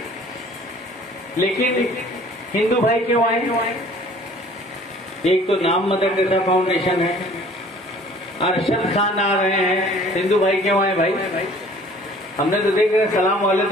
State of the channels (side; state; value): both; normal; correlation 0.52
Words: लेकिन हिंदू भाई क्यों आए? एक तो नाम मदर टेरेसा फाउंडेशन है, अरशद खान आ रहे हैं, हिंदू भाई क्यों आए भाई? हमने तो देख रहे सलाम वाले